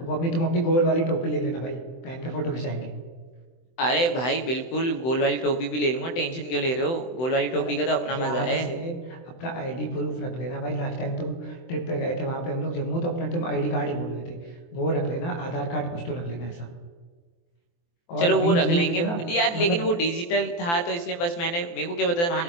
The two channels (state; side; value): late; right; 23 ms